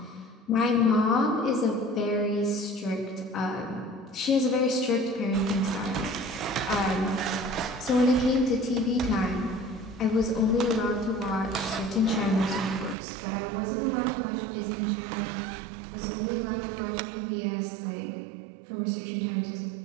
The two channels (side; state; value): left; drops out; at 13.0 s